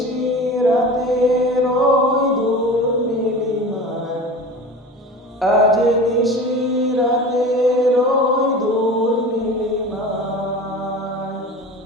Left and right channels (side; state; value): both; normal; correlation 0.35